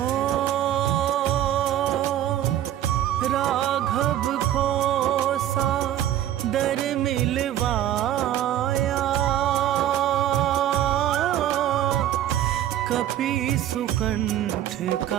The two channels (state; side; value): quieter; left; 11.9 dB